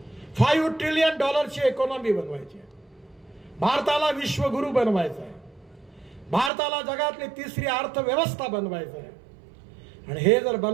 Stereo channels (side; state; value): left; drops out; at 6.5 s